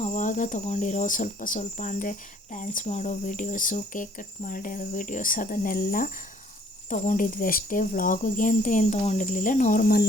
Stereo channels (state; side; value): normal; both; correlation 0.60